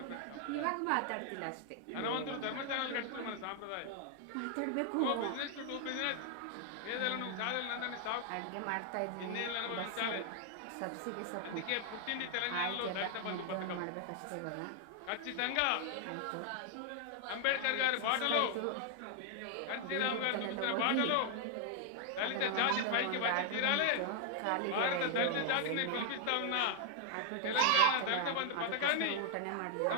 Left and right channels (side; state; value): both; different; correlation 0.00